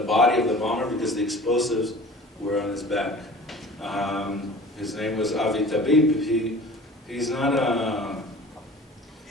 body of the bomber, because the explosives were on his back. His name was Avi Tabib. He's not a...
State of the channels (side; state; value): both; normal; correlation 0.42